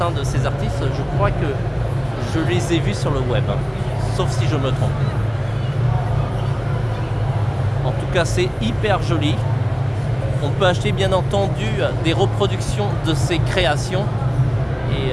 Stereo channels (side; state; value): both; identical; correlation 1.00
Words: de ces artistes, je crois que je les ai vus sur le web, sauf si je me trompe. En tout cas, c'est hyper joli. On peut acheter bien entendu des reproductions de ces créations et